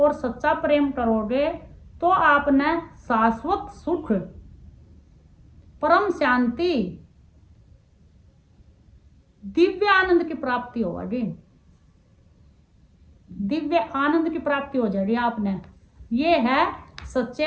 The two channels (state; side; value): identical; both; correlation 1.00